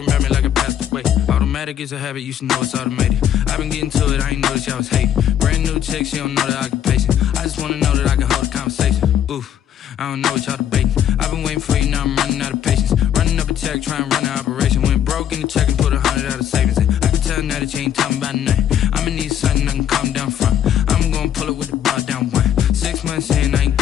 about me like I passed away. Automatic is a habit, you should know it's automated. I've been getting to it, I ain't noticed y'all was hating. Brand new chick, she don't know the occupation. I just wanna know that I can hold a conversation. Oof, I don't know what y'all debating. I've been waiting for you, now I'm running out of patience. Running up a check, trying to run an operation. Went broke in the check and put 100 out of savings in. I can tell now that you ain't talking about nothing. I'ma need something I can calm down from. I'm gonna pull it with the bar down one. 6 months in, I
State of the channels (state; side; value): quieter; right; 10.0 dB